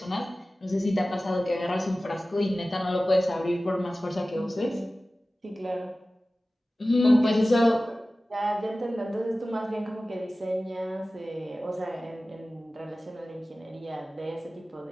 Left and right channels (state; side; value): normal; both; correlation 0.96